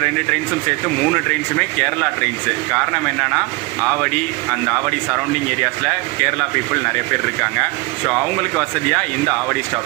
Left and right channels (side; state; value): left; quieter; 25.4 dB